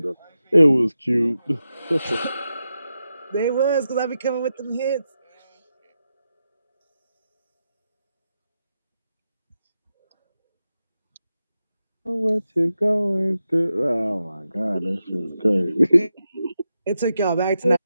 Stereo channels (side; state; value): both; inverted; correlation -0.89